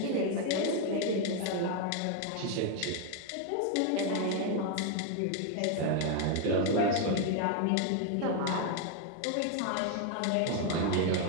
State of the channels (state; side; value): different; both; correlation 0.01